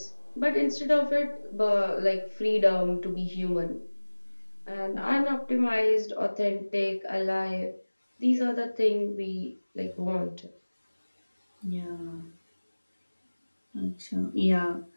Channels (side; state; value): both; inverted; correlation -1.00